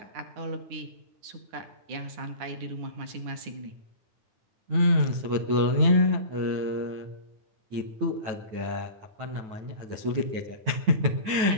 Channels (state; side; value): late; left; 9.2 ms